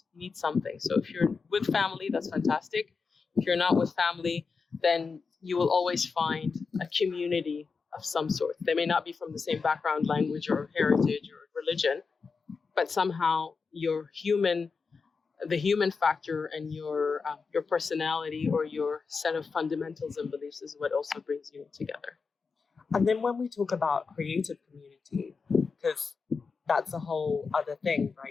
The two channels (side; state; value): right; quieter; 4.9 dB